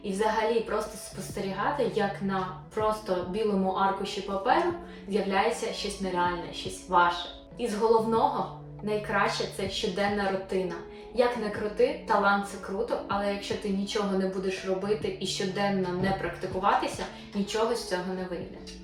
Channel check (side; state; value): both; identical; correlation 1.00